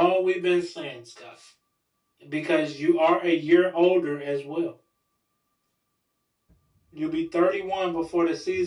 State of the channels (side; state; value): both; identical; correlation 1.00